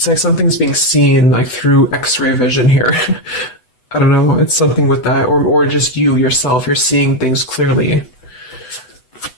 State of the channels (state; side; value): late; right; 8.0 ms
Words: like something's being seen like through X-ray vision here. I don't know, it's something with that, or just you yourself, you're seeing things clearly.